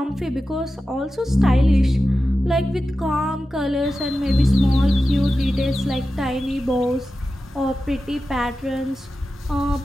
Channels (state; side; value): normal; both; correlation 0.93